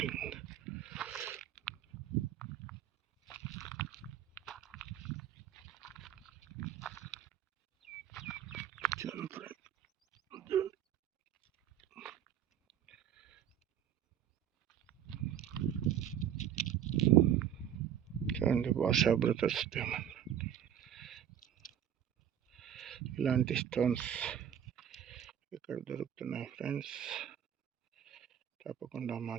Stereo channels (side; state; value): left; quieter; 10.0 dB